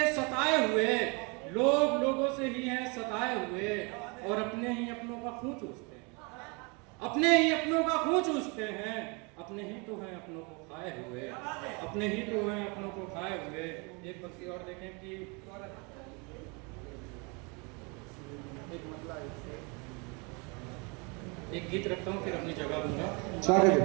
सताए हुए लोग लोगों से ही हैं सताए हुए, और अपने ही अपनों का खून चूसते हैं, अपने ही अपनों का खून चूसते हैं। अपने ही तो हैं अपनों को खाए हुए, अपने ही तो हैं अपनों को खाए हुए। एक पंक्ति और देखें कि एक गीत रखता हूँ फिर अपनी जगह दूंगा।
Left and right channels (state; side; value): quieter; left; 31.0 dB